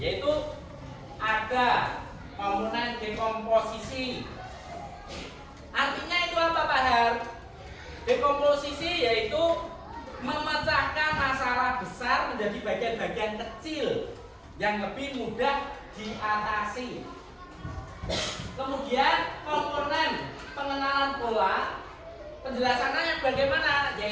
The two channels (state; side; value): identical; both; correlation 1.00